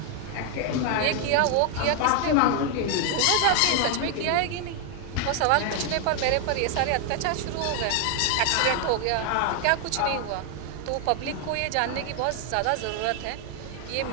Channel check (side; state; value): both; different; correlation 0.00